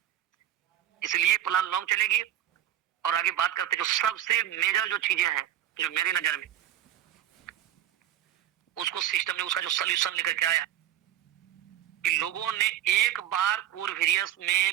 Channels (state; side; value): quieter; left; 12.0 dB